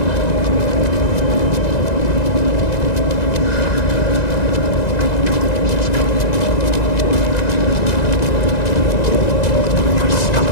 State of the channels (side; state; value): right; late; 1.9 ms